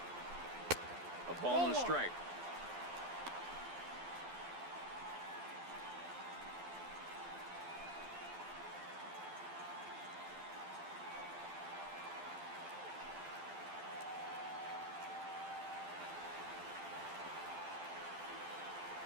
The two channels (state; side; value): late; left; 12 ms